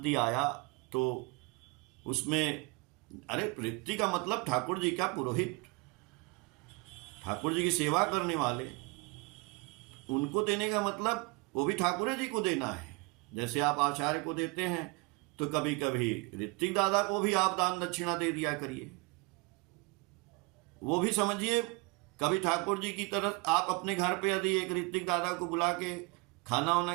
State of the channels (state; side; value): quieter; left; 27.1 dB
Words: आया, तो उसमें अरे ऋत्विक का मतलब ठाकुर जी का पुरोहित, ठाकुर जी की सेवा करने वाले, उनको देने का मतलब वो भी ठाकुर जी को देना है। जैसे आप आचार्य को देते हैं तो कभी कभी ऋत्विक दादा को भी आप दान दक्षिणा दे दिया करिए। वो भी समझिए कभी ठाकुर जी की तरफ आप अपने घर पे यदि एक ऋत्विक दादा को बुला के खाना वाना